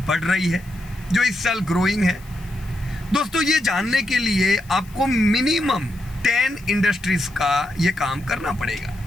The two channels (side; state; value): left; noise; hiss, 25 dB below the sound